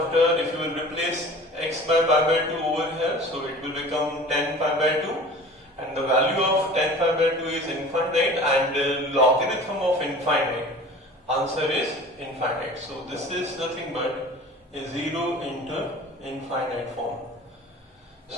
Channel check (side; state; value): both; normal; correlation 0.42